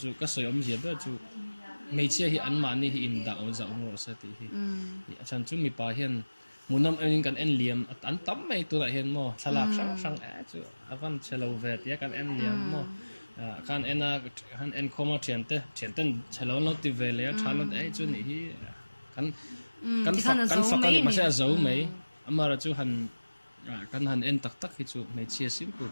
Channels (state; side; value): inverted; both; correlation -1.00